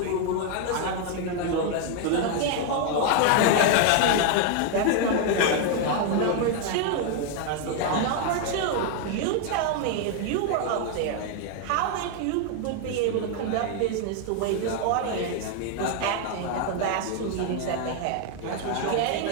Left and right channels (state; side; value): different; both; correlation 0.00